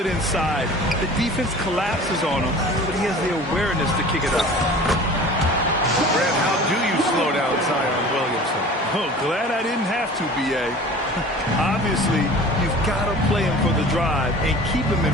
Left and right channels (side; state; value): both; normal; correlation 0.42